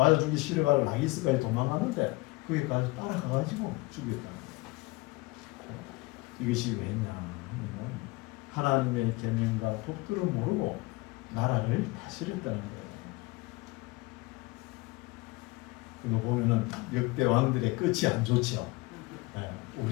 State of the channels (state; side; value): quieter; right; 22.9 dB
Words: 죽기 싫어가지고 라기스까지 도망가는데 거기까지 따라가가지고 죽였다는 거예요. 이것이 왜냐? 하나님의 계명과 법도를 모르고 나라를 다스렸다는 거예요. 이거 보면은 역대 왕들의 끝이 안 좋죠. 네,